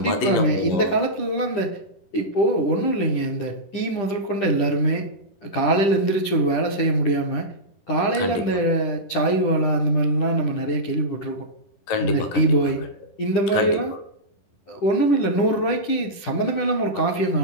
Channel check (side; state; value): right; late; 10 ms